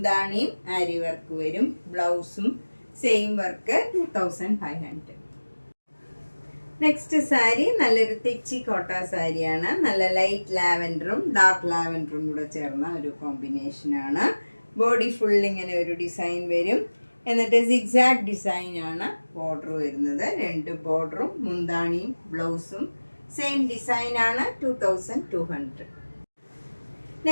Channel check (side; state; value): both; inverted; correlation -1.00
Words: ആരി വർക്ക് വരും. ബ്ലൗസും സെയിം വർക്ക്. 2500. നെക്സ്റ്റ് സാരി നല്ലൊരു തെച്ചി കോട്ട സാരിയാണ്. നല്ല ലൈറ്റ് ലാവൻഡറും ഡാർക്ക് ലാവൻഡറും കൂടെ ചേർന്ന ഒരു കോമ്പിനേഷനാണ്. ബോഡി ഫുൾ ഇങ്ങനെ ഒരു ഡിസൈൻ വരും. എന്നിട്ട് സിഗ്സാഗ് ഡിസൈനാണ് ബോർഡർ വരുന്നത്. 2 ബോർഡറും മുന്താണിയും ബ്ലൗസും സെയിം ഡിസൈനാണ്. 2200.